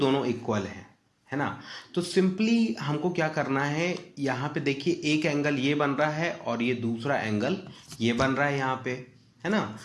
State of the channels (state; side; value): identical; both; correlation 1.00